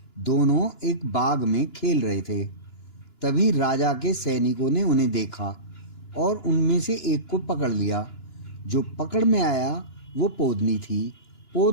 दोनों एक बाग में खेल रहे थे। तभी राजा के सैनिकों ने उन्हें देखा और उनमें से एक को पकड़ लिया। जो पकड़ में आया वो पोदनी थी।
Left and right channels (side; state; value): right; late; 2.9 ms